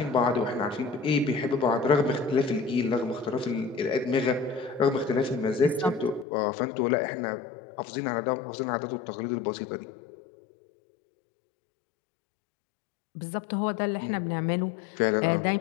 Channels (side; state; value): right; drops out; at 6.2 s